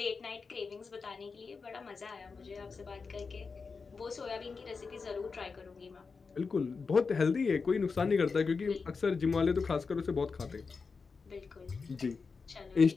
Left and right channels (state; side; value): quieter; right; 4.8 dB